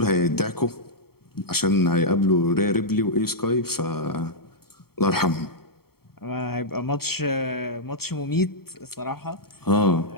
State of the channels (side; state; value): right; late; 0.95 ms